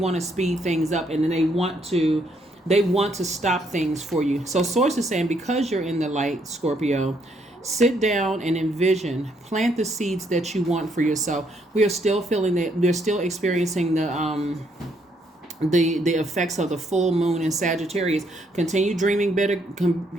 speed things up, and then they want to stop things for you. So Source is saying, because you're in the light, Scorpio, sit down and envision, plant the seeds that you want for yourself. We are still feeling that we're still experiencing the effects of the full moon in Sagittarius. Continue dreaming better.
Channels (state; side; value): normal; both; correlation 0.72